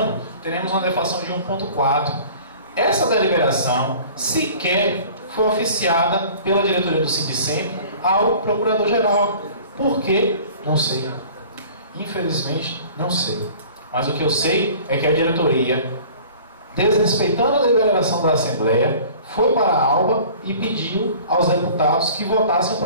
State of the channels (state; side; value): inverted; both; correlation -0.46